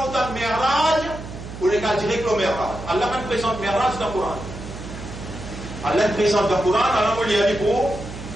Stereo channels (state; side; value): noise; right; hum, 11 dB below the sound